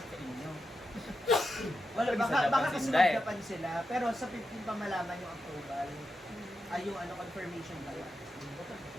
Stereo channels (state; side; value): normal; both; correlation 0.87